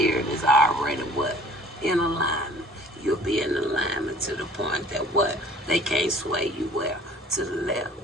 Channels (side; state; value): both; normal; correlation 0.52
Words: is already what? In alignment. You'll be in alignment to the point that what? They can't sway you where? To the left